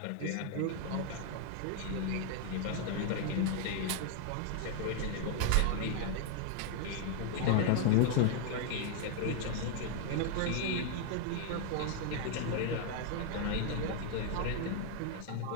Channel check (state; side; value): different; both; correlation 0.00